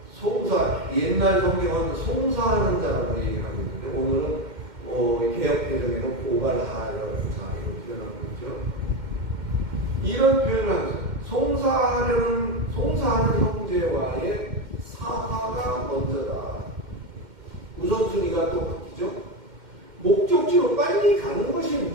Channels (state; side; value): late; left; 2.1 ms